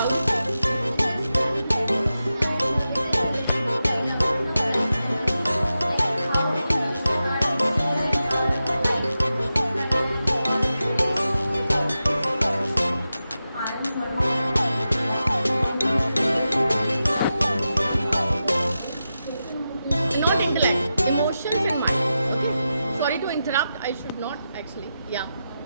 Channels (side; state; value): both; inverted; correlation -0.91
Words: Not intellect, emotions and mind. Okay. Sorry to interrupt. I should not actually. Yeah.